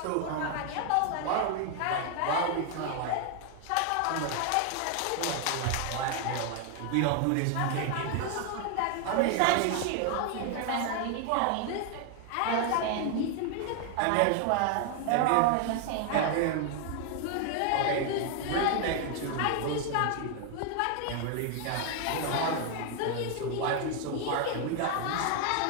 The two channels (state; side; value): different; both; correlation 0.00